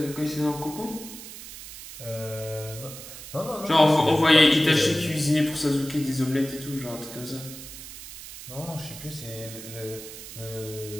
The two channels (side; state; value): right; noise; hiss, 13 dB below the sound